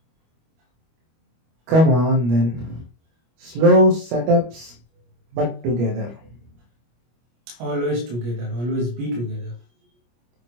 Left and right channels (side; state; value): left; late; 25 ms